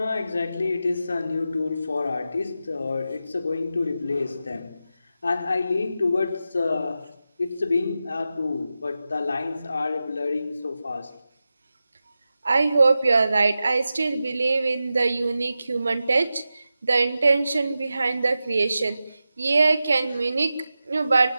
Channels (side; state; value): both; inverted; correlation -0.92